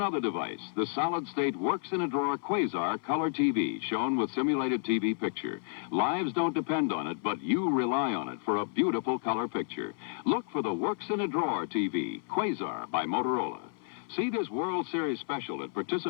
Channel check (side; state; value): right; silent; 57 dB below the other